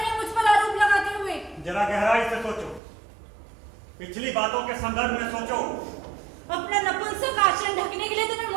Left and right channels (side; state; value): left; drops out; at 2.8 s